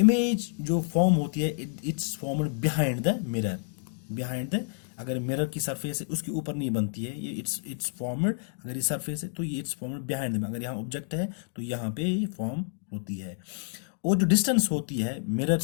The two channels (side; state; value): right; silent; digital silence